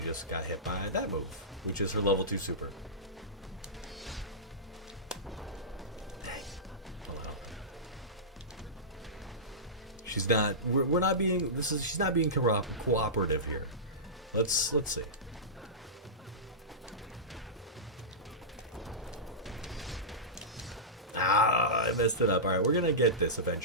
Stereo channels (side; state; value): both; normal; correlation -0.17